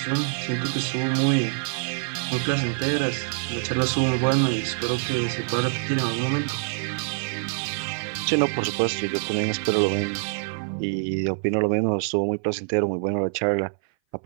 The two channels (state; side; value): silent; left; 58 dB below the other